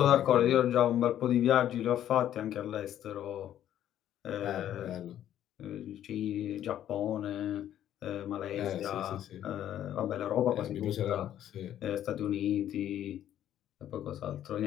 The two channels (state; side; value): quieter; right; 11.2 dB